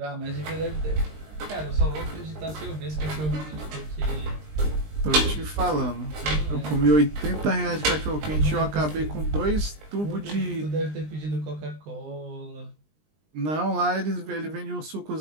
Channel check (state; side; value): late; left; 20 ms